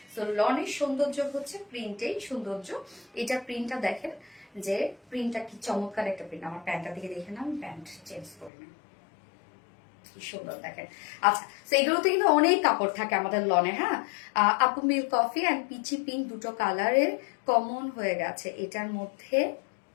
সো লনের সৌন্দর্য হচ্ছে প্রিন্টেই সৌন্দর্য। এটা প্রিন্টটা দেখেন, যে প্রিন্টটা কি চমৎকার একটা প্রিন্ট। আমার প্যান্টটা দিকে দেখে না, আমি প্যান্ট চেঞ্জ করি না, কি সুন্দর দেখেন। আচ্ছা, তো এগুলোতে কিন্তু অনেক কাপড় থাকে আমাদের লনে, হ্যাঁ। আপু milk coffee and peachy pink দুটো কালারের কমন হয়ে গেছে, এটার মধ্যে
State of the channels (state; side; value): drops out; right; at 8.5 s